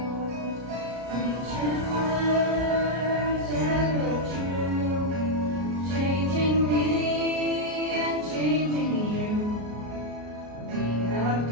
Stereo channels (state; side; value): late; left; 33 ms